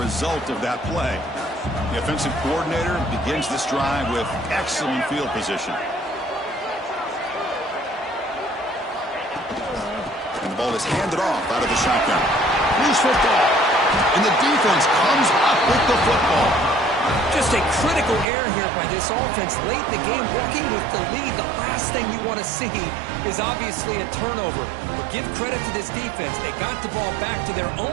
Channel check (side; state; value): left; drops out; at 18.2 s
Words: of that play. The offensive coordinator begins this drive with excellent field position. And the ball is handed off out of the shotgun. Loose football. And the defense comes up with the football. Just a critical error here by this offense late in the game, working with the lead. The last thing you want to see is obviously a turnover. But give credit to this defense. They got the ball back to their